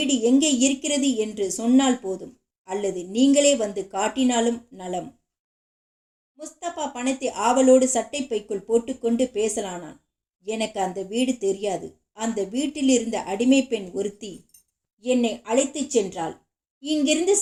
எங்கே இருக்கிறது என்று சொன்னால் போதும், அல்லது நீங்களே வந்து காட்டினாலும் நலம். முஸ்தபா பணத்தை ஆவலோடு சட்டை பைக்குள் போட்டுக்கொண்டு பேசலானான். எனக்கு அந்த வீடு தெரியாது. அந்த வீட்டில் இருந்த அடிமை பெண் ஒருத்தி என்னை அழைத்துச் சென்றாள். இங்கிருந்து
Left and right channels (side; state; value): both; identical; correlation 1.00